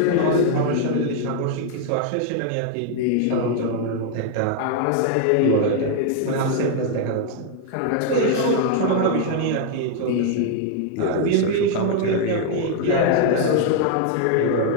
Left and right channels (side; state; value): both; different; correlation 0.00